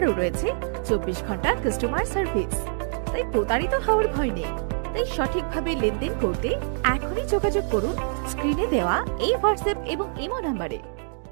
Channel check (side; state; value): left; silent; digital silence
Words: রয়েছে 24 ঘন্টা কাস্টমার সার্ভিস, তাই প্রতারিত হওয়ার ভয় নেই। তাই সঠিকভাবে লেনদেন করতে এখনই যোগাযোগ করুন স্ক্রিনে দেওয়া এই হোয়াটসঅ্যাপ এবং ইমো নাম্বারে।